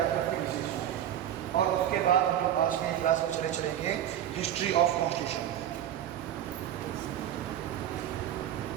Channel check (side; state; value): left; quieter; 10.9 dB